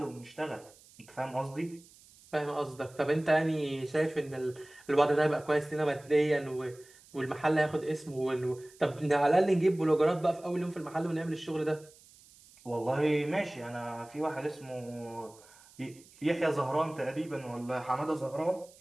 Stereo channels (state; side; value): noise; right; hiss, 25 dB below the sound